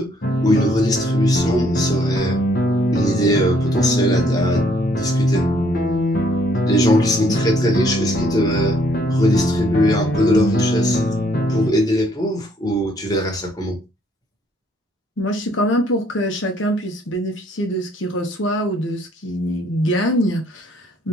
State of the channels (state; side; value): normal; both; correlation 0.66